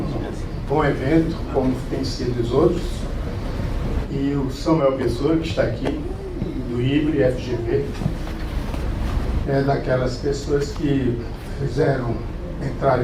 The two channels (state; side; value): identical; both; correlation 1.00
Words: bom evento, como tem sido os outros. E o Samuel Pessoa, que está aqui, do IBRE FGV, é daquelas pessoas que